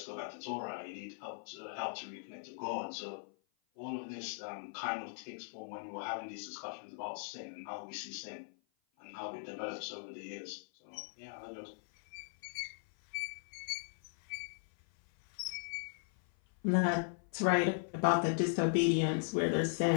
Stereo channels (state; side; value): silent; right; 52 dB below the other